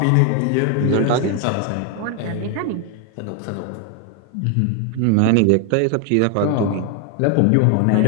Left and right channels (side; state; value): both; different; correlation 0.00